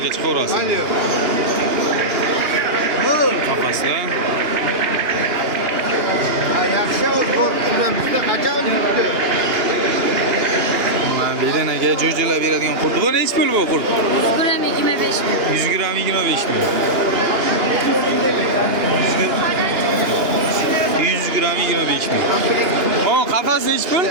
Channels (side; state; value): left; late; 2.9 ms